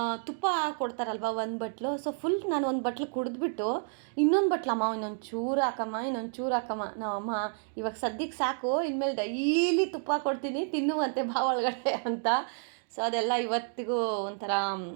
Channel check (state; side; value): silent; left; 58 dB below the other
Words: ತುಪ್ಪ ಕೊಡ್ತಾರಲ್ವ ಒಂದು ಬಟ್ಲು. ಸೊ ಫುಲ್ ನಾನು ಒಂದು ಬಟ್ಲು ಕುಡಿದ್ಬಿಟ್ಟು ಇನ್ನೊಂದು ಬಟ್ಲಮ್ಮ ಇನ್ನೊಂದು ಚೂರು ಹಾಕಮ್ಮ, ಇನ್ನೊಂದು ಚೂರು ಹಾಕಮ್ಮ, ನಾವಮ್ಮ ಇವಾಗ ಸದ್ಯಕ್ಕೆ ಸಾಕು, ಇನ್ಮೇಲೆ ಡೈಲಿ ತುಪ್ಪ ಕೊಡ್ತೀನಿ ತಿನ್ನುವಂತೆ ಬಾ ಒಳಗಡೆ ಅಂತ. ಸೊ ಅದೆಲ್ಲ ಇವತ್ತಿಗೂ ಒಂಥರ